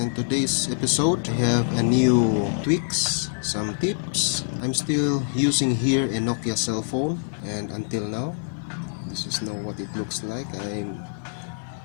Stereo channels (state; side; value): silent; right; digital silence